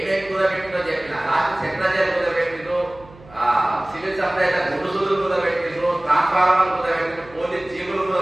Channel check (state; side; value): noise; right; hum, 23 dB below the sound